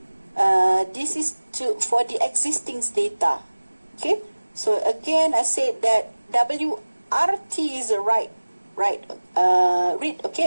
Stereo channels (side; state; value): both; inverted; correlation -1.00